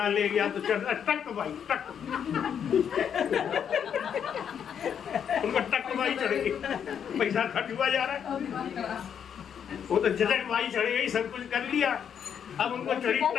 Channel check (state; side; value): quieter; right; 8.1 dB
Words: ले गया, तो चढ़ टक भाई टक उनको टक भाई चढ़ गई, पैसा खर्च हुआ जा रहा है। वो तो झटक भाई चढ़ गई, सब कुछ कर लिया, अब उनको चढ़ी